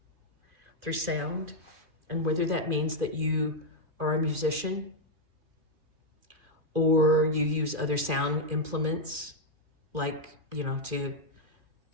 through sound. And whether that means that you are a musician or you use other sound implements like, to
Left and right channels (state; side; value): late; left; 2.4 ms